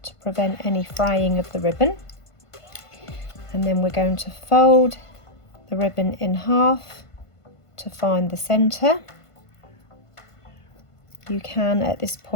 to prevent any fraying of the ribbon. And then we're going to fold the ribbon in half to find the centre. You can at this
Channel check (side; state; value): right; late; 1.5 ms